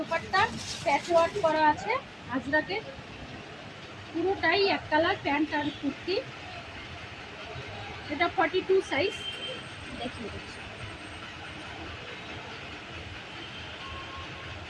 প্যাচওয়ার্ক করা আছে, আজরাকের পুরোটাই এক কালার, প্যান্ট আর কুর্তি। এটা 42 সাইজ দেখিয়ে দিচ্ছি।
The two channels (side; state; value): both; identical; correlation 1.00